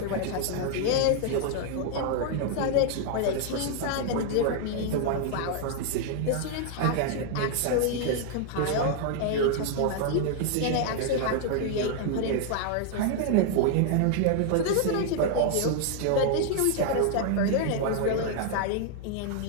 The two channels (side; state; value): both; different; correlation 0.00